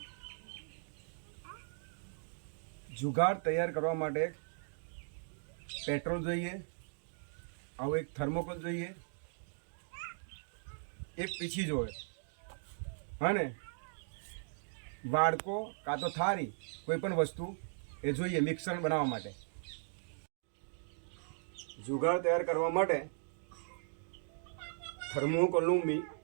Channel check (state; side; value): silent; left; digital silence